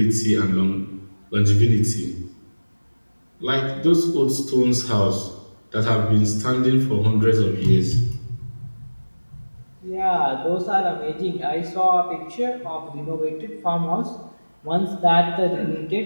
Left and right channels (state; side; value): inverted; both; correlation -1.00